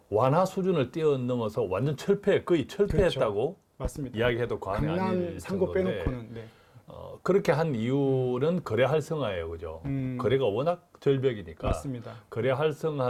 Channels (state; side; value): identical; both; correlation 1.00